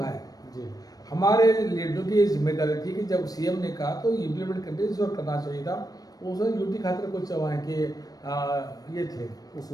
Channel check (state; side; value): late; right; 0.18 ms